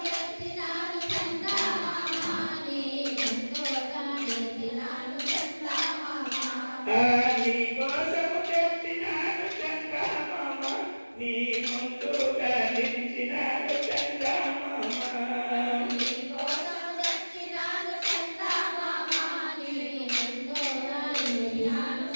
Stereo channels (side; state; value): both; inverted; correlation -1.00